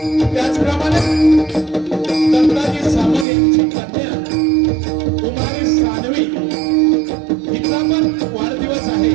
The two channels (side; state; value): left; drops out; at 3.2 s